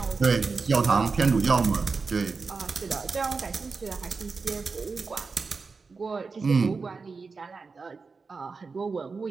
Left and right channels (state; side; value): quieter; left; 4.6 dB